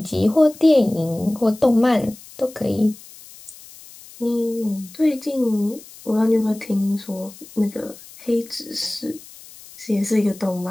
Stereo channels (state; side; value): noise; left; hiss, 20 dB below the sound